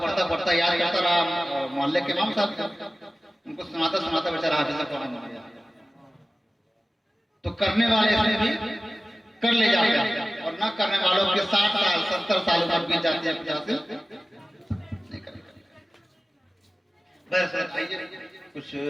याद करता रहा। मोहल्ले के इमाम साहब उनको सुनाता बेचारा हाफिज कुरान बन गया। तो करने वाले इसमें भी कर ले जाते हैं, और न करने वालों के 60 साल 70 साल उम्र बीत जाती है, 50 नहीं करेगा। बस आइए कुछ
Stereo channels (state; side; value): normal; both; correlation 0.96